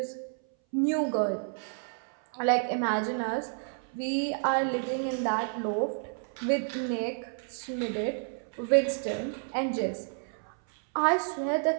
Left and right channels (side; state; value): left; silent; 58 dB below the other